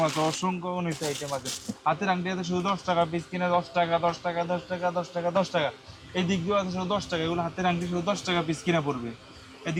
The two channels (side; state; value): both; identical; correlation 1.00